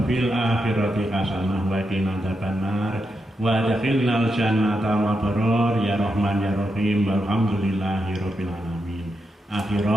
fil akhirati hasanah wa qina adzabannar. wa adkhilnal jannata ma baror ya rahman ya rahim walhamdulillahirabbil alamin.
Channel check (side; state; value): both; normal; correlation 0.85